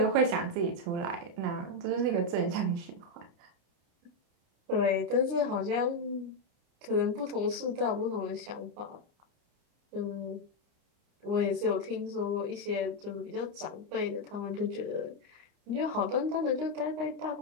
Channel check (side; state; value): left; late; 29 ms